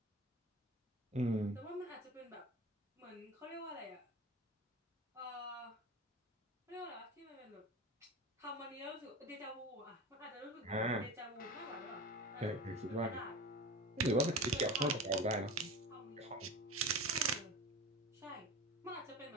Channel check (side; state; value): both; normal; correlation 0.31